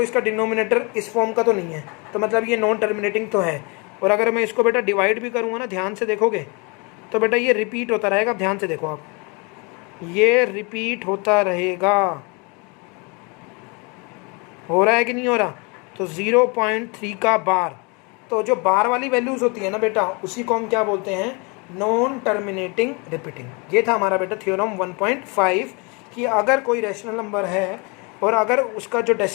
इसका डिनोमिनेटर इस फॉर्म का तो नहीं है, तो मतलब ये नॉन टर्मिनेटिंग तो है। और अगर मैं इसको बेटा डिवाइड भी करूँगा ना, ध्यान से देखोगे तो बेटा ये रिपीट होता रहेगा। ध्यान से देखो आप, ये रिपीट होता रहेगा। हो रहा है कि नहीं हो रहा। तो 0.3 का बार, तो जो बार वाली वैल्यूज होती है ना बेटा, उसी को हम क्या बोलते हैं, नॉन टर्मिनेटिंग रिपीटिंग। ये था हमारा बेटा थ्योरम 1.5 कि अगर कोई रैशनल नंबर है और अगर उसका जो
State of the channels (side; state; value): right; quieter; 30.5 dB